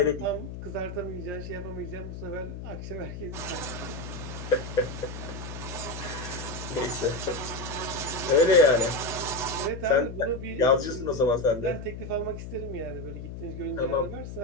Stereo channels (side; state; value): left; noise; hum, 9 dB below the sound